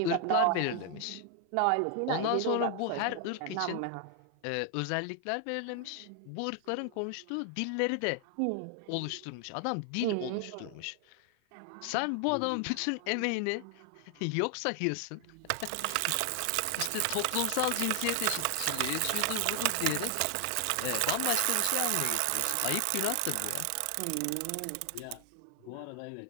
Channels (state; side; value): different; both; correlation 0.00